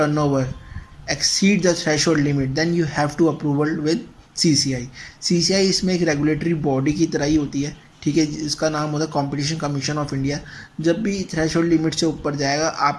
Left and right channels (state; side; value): identical; both; correlation 1.00